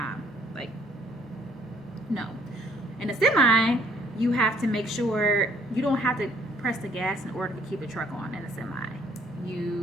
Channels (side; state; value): both; normal; correlation 0.62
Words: Like, no. In a semi, you have to make sure you don't have to press the gas in order to keep the truck on in a semi.